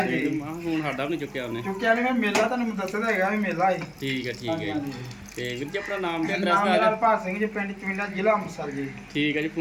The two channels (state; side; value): identical; both; correlation 1.00